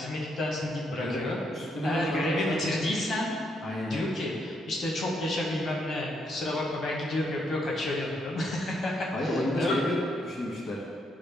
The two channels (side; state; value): both; normal; correlation 0.76